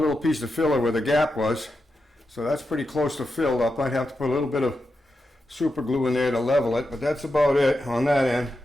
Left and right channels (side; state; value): both; normal; correlation 0.88